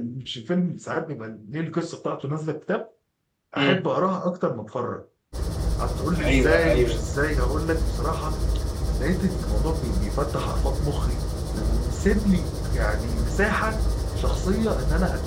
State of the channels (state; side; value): identical; both; correlation 1.00